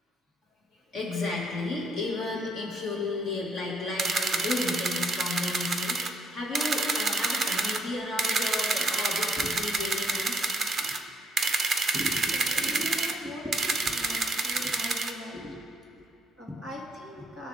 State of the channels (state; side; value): normal; both; correlation 0.69